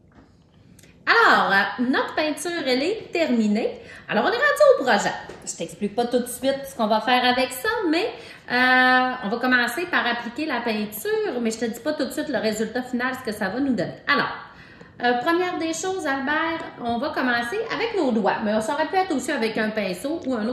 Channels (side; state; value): both; identical; correlation 1.00